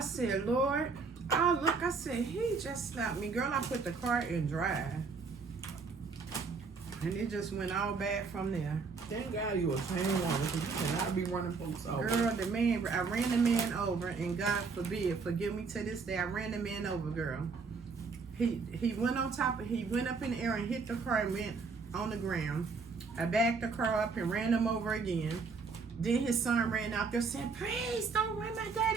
Lord, I said, he just slapped me. Girl, I put the car in drive. And it just went all bad from there. Thank God you a chain woman, because you cannot be running folks over. Girl, I ran the man over, and God forbid, forgive me to this day, I ran the man over, girl. He went on top of, he went up in the air and hit the car and went on the ground. I backed the car up and ran him over again. Then his son ran out there saying, please don't run my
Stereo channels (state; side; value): quieter; left; 4.7 dB